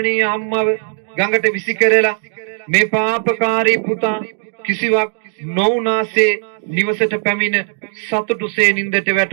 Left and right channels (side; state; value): left; silent; digital silence